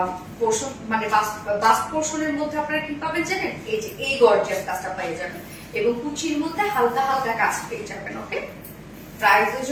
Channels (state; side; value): identical; both; correlation 1.00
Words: পোর্শন মানে বাস্ট পোর্শনের মধ্যে আপনারা কি পাবেন জানেন, এই যে এই গর্জিয়াস কাজটা পেয়ে যাবেন এবং কুচির মধ্যে হালকা হালকা কাজ পেয়ে যাবেন। ওকে, প্রাইসের